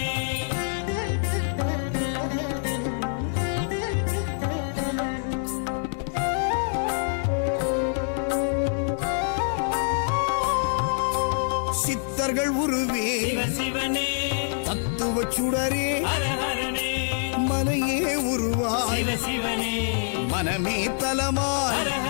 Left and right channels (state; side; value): silent; right; digital silence